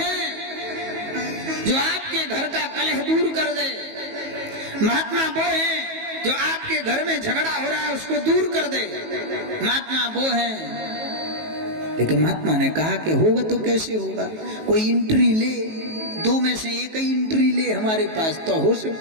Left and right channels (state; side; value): late; left; 19 ms